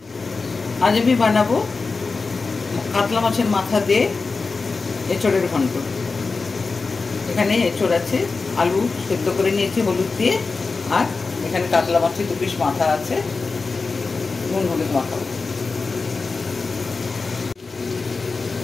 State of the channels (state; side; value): quieter; right; 4.2 dB